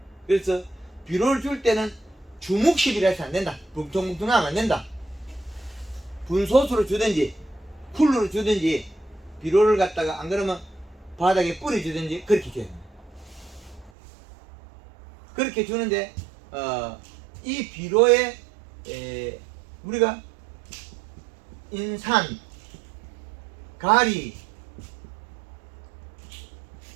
그래서 비료를 줄 때는 주묵식이라 해서 안 된다. 뭉텅뭉텅하면 안 된다. 분소수로 주든지 쿨러로 주든지 비료를 갖다가 안 그러면 바닥에 뿌려 주든지 그렇게 줘야 됩니다. 그렇게 주는데 이 비료에 우리가 인산, 가리,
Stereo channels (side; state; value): left; drops out; at 13.9 s